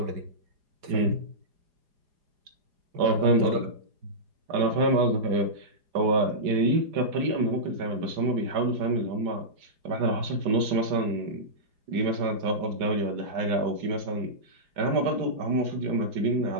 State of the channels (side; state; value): left; late; 4.9 ms